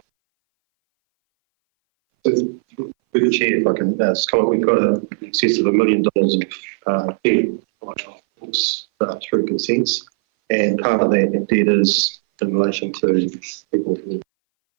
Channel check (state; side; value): silent; left; 61 dB below the other